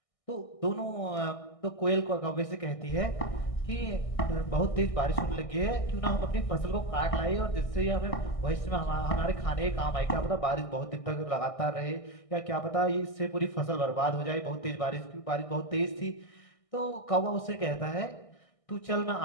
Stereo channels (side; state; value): right; late; 1.6 ms